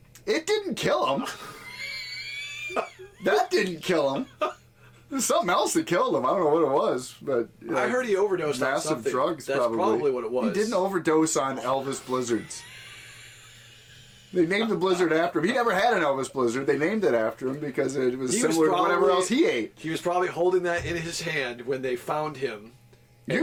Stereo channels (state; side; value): identical; both; correlation 1.00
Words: It didn't kill him. That didn't kill him. There's something else that killed him. I don't know what it was, but I heard he overdosed on massive something. drugs. That's probably what it was. He didn't overdose on Elvis Blizzards. They named the Blizzard after him. He never had an Elvis Blizzard. They named it after him because it was similar to whatever else he ate. He was probably holding that in his hand when they found him. You're